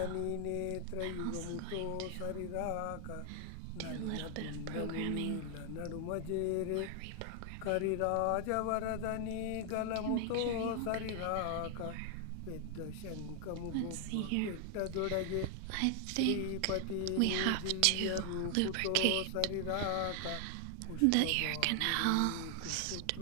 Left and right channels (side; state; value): both; different; correlation 0.00